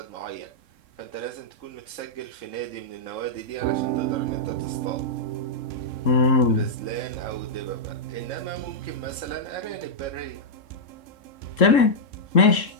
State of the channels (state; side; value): late; right; 3.7 ms